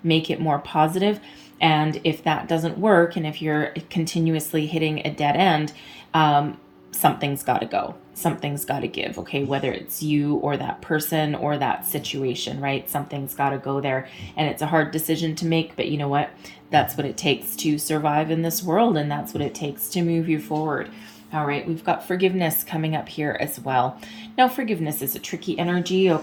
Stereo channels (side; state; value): both; identical; correlation 1.00